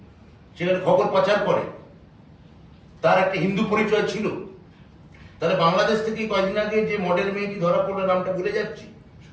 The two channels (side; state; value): both; identical; correlation 1.00